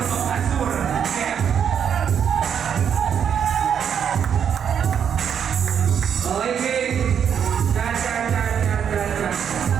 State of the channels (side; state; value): left; quieter; 8.1 dB